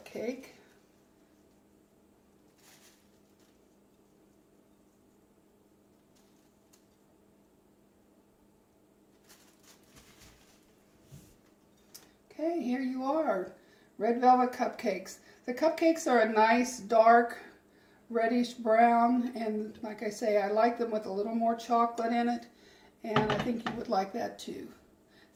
Okay, here you are, red velvet cupcakes. The cupcakes are a nice dark reddish brown, and like I say, I like them with a little more chocolate in it, and I think you would like that too.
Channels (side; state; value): both; identical; correlation 1.00